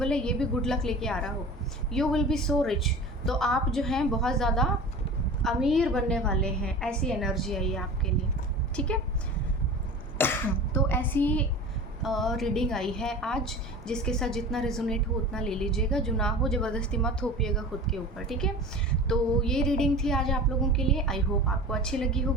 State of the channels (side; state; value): both; normal; correlation 0.37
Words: है ये भी गुड लक लेके आ रहा हो। You will be so rich, तो आप जो हैं बहुत ज़्यादा अमीर बनने वाले हैं, ऐसी एनर्जी आई है आपके लिए, ठीक है। तो ऐसी रीडिंग आई है आज, जिसके साथ जितना रेजोनेट हो उतना ले लीजिएगा, जो ना हो ज़बरदस्ती मत थोपिएगा खुद के ऊपर, ठीक है। तो ये रीडिंग थी आज आप लोगों के लिए। आई होप आपको अच्छी लगी